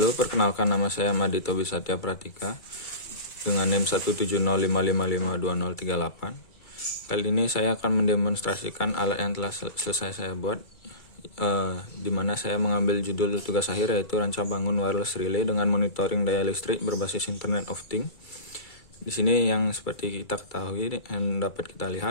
perkenalkan nama saya Madito Bisatya Pratika dengan NIM 17055552038. Kali ini saya akan mendemonstrasikan alat yang telah selesai saya buat, di mana saya mengambil judul tugas akhir yaitu ranca bangun wireless relay dengan monitoring daya listrik berbasis Internet of Things. Di sini yang seperti kita ketahui dan dapat kita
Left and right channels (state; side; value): late; right; 2.3 ms